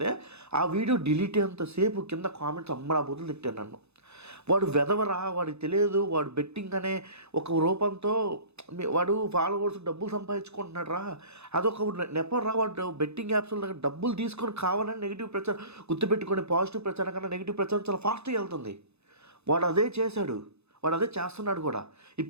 ఆ వీడియో డిలీట్ అయ్యేంతసేపు కింద కామెంట్స్ అమ్మడా బుద్ధులు తిట్టాను నన్ను. వాడు వెదవరా, వాడికి తెలియదు, వాడు బెట్టింగ్ అనే ఒక రూపంతో వాడు ఫాలోవర్స్ డబ్బులు సంపాదించుకుంటున్నాడు రా, అదొక నెపరా. వాడు బెట్టింగ్ యాప్స్లో దగ్గర డబ్బులు తీసుకొని కావాలని నెగిటివ్ ప్రచారం గుర్తుపెట్టుకొని, పాజిటివ్ ప్రచారం కన్నా నెగిటివ్ ప్రచారం చాలా ఫాస్ట్గా వెళ్తుంది. వాడు అదే చేశాడు, వాడు అదే చేస్తున్నాడు కూడా.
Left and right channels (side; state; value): left; late; 0.80 ms